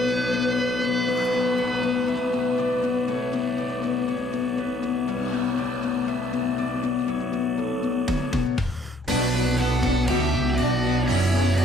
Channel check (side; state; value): both; normal; correlation 0.65